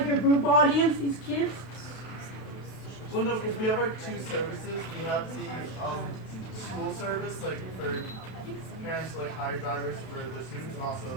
your group audience, these kids? Well, no, because we have like two services. We have the school service, like for parents to like hire drivers for the students, and also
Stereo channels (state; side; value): late; right; 32 ms